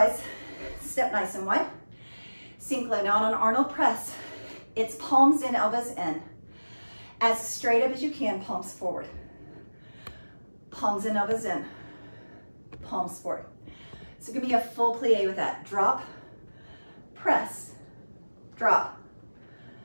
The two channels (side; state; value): both; inverted; correlation -1.00